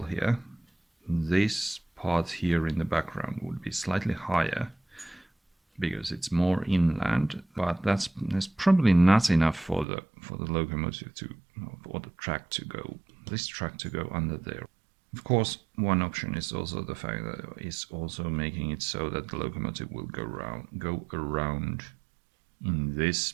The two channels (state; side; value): drops out; left; at 9.9 s